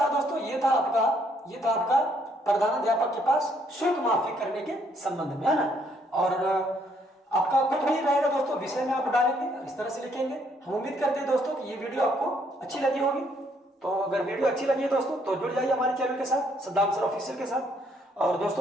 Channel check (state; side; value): normal; both; correlation 0.69